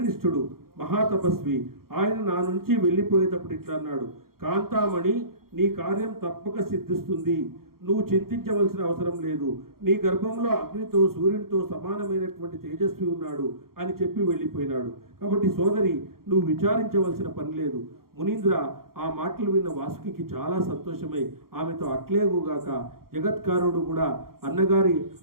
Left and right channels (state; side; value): late; left; 0.93 ms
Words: మహాతపస్వి. ఆయన నా నుంచి వెళ్ళిపోయేటప్పుడు ఇట్లా అన్నాడు, కాంతామణి, నీ కార్యం తప్పక సిద్ధిస్తుంది. నువ్వు చింతించవలసిన అవసరం లేదు. నీ గర్భంలో అగ్నితో సూర్యునితో సమానమైనటువంటి తేజస్వి ఉన్నాడు అని చెప్పి వెళ్ళిపోయినాడు. కాబట్టి సోదరి, నువ్వు విచారించవలసిన పని లేదు. మునీంద్ర ఆ మాటలు విన్న వాసుకి చాలా సంతోషమై ఆమెతో అట్లేగుగాక జగత్కారుడు కూడా